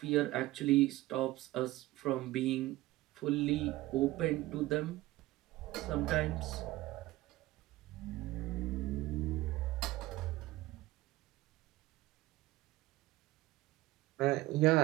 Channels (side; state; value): left; quieter; 18.0 dB